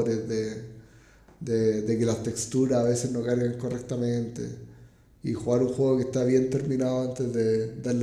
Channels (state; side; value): identical; both; correlation 1.00